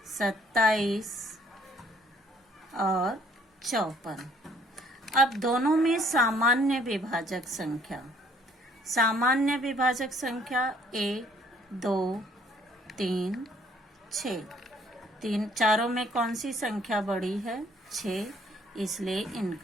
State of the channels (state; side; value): normal; both; correlation 0.61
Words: 27 और 54। अब दोनों में सामान्य विभाजक संख्या, सामान्य विभाजक संख्या 1, 2, 3, 6। चारों में कौन सी संख्या बड़ी है? 6, इसलिए